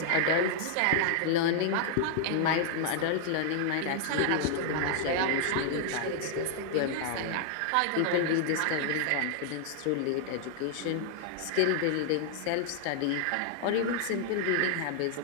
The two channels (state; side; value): different; both; correlation 0.00